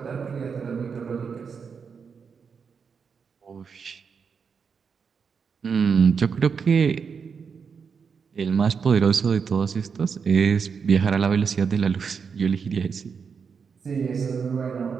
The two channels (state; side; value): quieter; left; 6.0 dB